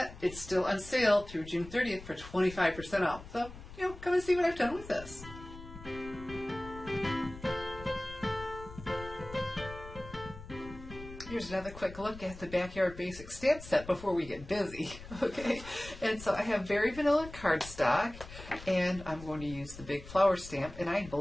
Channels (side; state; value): left; noise; rumble, 15 dB below the sound